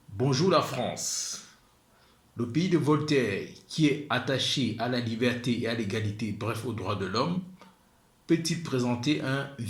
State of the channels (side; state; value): both; identical; correlation 1.00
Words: Bonjour la France, le pays de Voltaire qui est attaché à la liberté et à l'égalité, bref aux droits de l'homme, peut-il présenter un